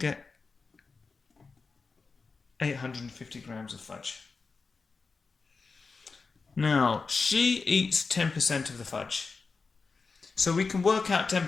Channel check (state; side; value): quieter; right; 4.5 dB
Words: 850 grams of fudge. Now, she eats 10% of the fudge. So we can work out